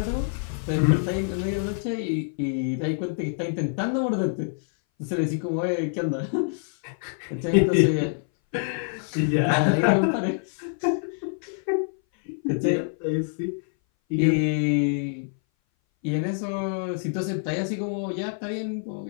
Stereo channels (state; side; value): silent; right; 58 dB below the other